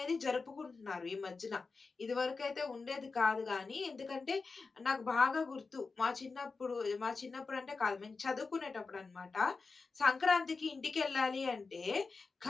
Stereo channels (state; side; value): quieter; right; 4.3 dB